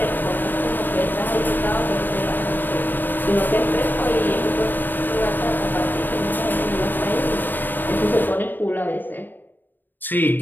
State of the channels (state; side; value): late; right; 0.091 ms